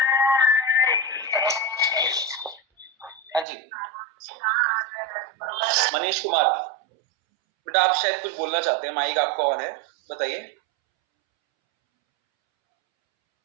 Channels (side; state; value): left; drops out; at 3.5 s